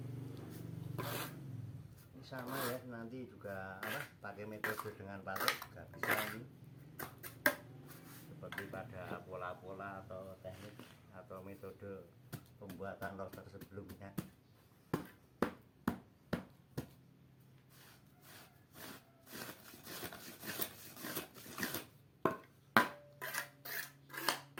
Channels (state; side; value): identical; both; correlation 1.00